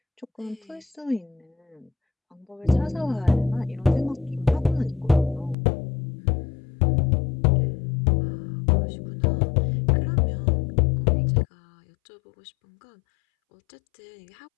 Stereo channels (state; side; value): drops out; right; at 5.6 s